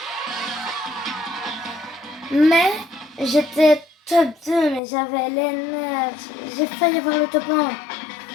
Mais j'étais top 2, mais j'avais les nerfs. J'ai failli avoir le top 1.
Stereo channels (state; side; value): drops out; right; at 4.8 s